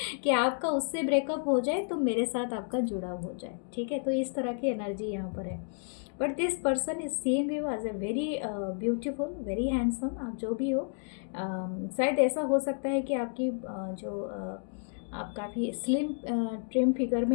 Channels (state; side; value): silent; right; 57 dB below the other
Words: कि आपका उससे ब्रेकअप हो जाए तो मेरे साथ आपका जुड़ाव हो जाए। ठीक है, तो इस तरह की एनर्जी यहाँ पर है। But this person is seeing you as a very beautiful, very handsome, आप जो भी हो। शायद ऐसा हो सकता है कि आपकी आप काफ़ी स्लिम ट्रिम फिगर